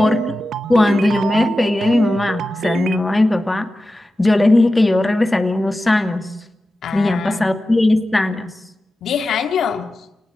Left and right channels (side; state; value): both; normal; correlation 0.93